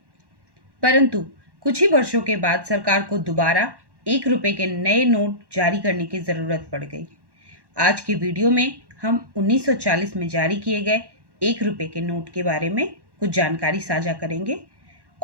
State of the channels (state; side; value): late; left; 1.1 ms